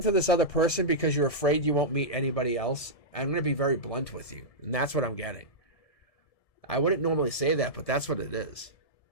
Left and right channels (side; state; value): right; late; 1.7 ms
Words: to this other person because you're afraid you won't meet anybody else? I'm going to be very blunt with you, and that's what I'm getting. I wouldn't normally say that, but that's what it is.